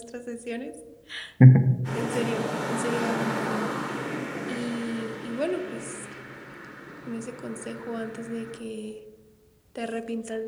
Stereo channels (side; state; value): both; identical; correlation 1.00